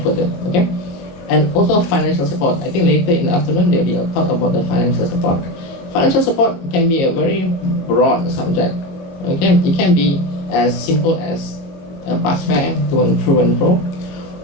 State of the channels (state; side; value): late; right; 23 ms